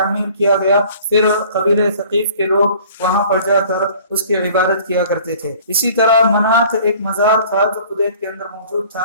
کیا گیا، پھر قبیلہ ثقیف کے لوگ وہاں پر جا کر اس کی عبادت کیا کرتے تھے۔ اسی طرح منات ایک مزار تھا جو قدیت کے اندر موجود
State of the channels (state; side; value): inverted; both; correlation -0.50